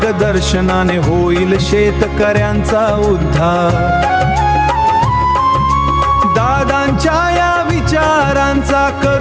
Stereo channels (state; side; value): identical; both; correlation 1.00